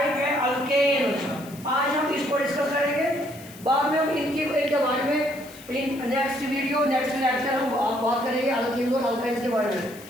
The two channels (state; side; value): noise; left; hiss, 20 dB below the sound